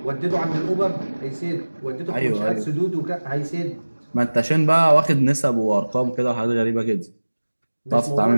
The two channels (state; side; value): inverted; both; correlation -1.00